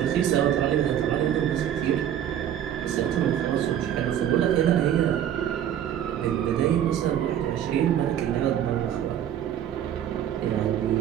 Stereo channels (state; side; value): quieter; left; 10.4 dB